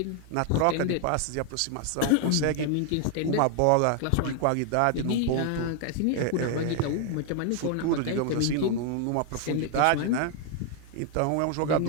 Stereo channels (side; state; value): both; different; correlation 0.00